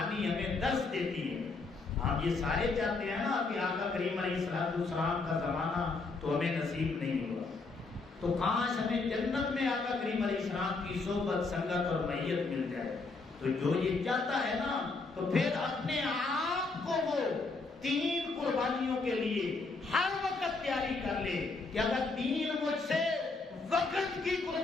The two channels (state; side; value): quieter; right; 3.9 dB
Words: ہمیں درس دیتی ہے. ہم یہ سارے چاہتے ہیں نا کہ آقا کریم علیہ السلام کا زمانہ تو ہمیں نصیب نہیں ہوا, تو کاش ہمیں جنت میں آقا کریم علیہ السلام کی صحبت سنگت اور معیت مل جائے. تو جو یہ چاہتا ہے نا تو پھر اپنے آپ کو وہ 3 قربانیوں کے لیے ہر وقت تیاری کر لے کہ اگر دین مجھ سے وقت کی